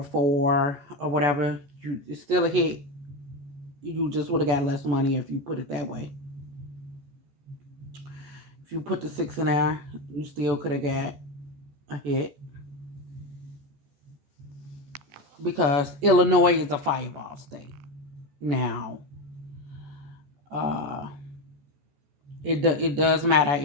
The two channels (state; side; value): late; left; 14 ms